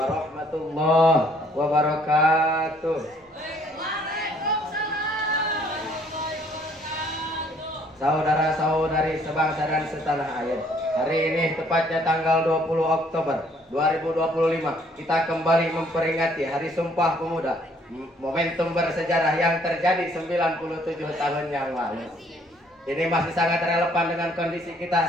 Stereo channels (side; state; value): both; normal; correlation 0.63